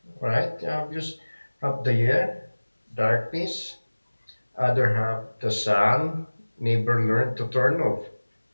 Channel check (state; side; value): inverted; both; correlation -1.00